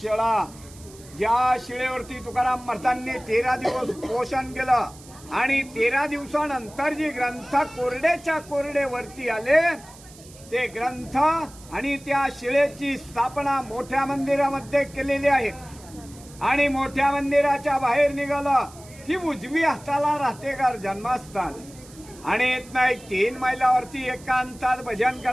ज्या शिळेवरती तुकाराम महाराजांनी 13 दिवस पोषण केलं आणि 13 दिवसानंतर जे ग्रंथ कोरडेच्या कोरडे वरती आले ते ग्रंथ आणि त्या शिळेची स्थापना मोठ्या मंदिरामध्ये केलेली आहे. आणि मोठ्या मंदिराच्या बाहेर निघालं की उजवी हाताला राहतेकर जन्मस्थान. आणि इथनं एक 3 मैलावरती एकांतात भजन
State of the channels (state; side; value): noise; right; hiss, 21 dB below the sound